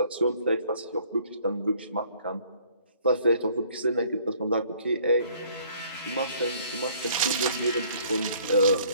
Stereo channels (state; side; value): inverted; both; correlation -0.58